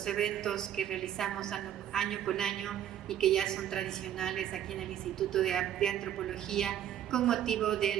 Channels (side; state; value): left; quieter; 10.7 dB